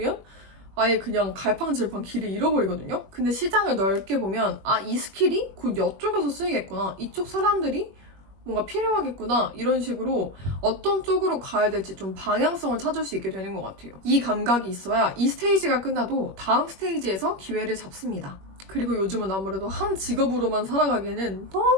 아예 그냥 갈팡질팡 길을 잃어버리거든요. 근데 시장을 넓게 보면 이 스킬이 곧 이쪽에서 쓰이겠구나. 이쪽 사람들이 뭔가 필요하겠구나. 이런 식으로 어떤 쪽으로 가야 될지 좀 방향성을 찾을 수 있게 되는 것 같아요. 이 감각이 있어야 이 스테이지가 끝나도 다음 스테이지에서 기회를 잡습니다. 그리고 요즘은 아무래도 한 직업으로만 살아가기에는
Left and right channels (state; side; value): late; left; 21 ms